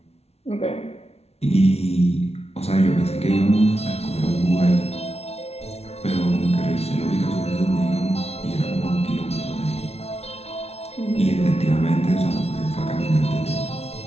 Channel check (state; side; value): late; right; 0.31 ms